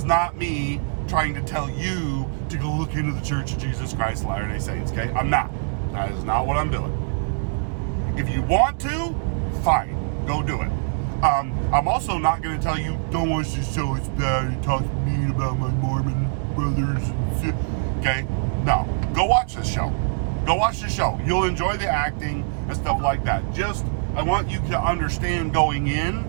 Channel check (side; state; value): left; silent; 63 dB below the other